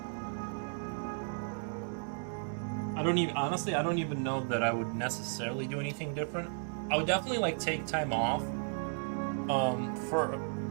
I don't even know that I would necessarily do anything different. I would definitely like take time off, for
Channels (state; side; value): silent; left; 55 dB below the other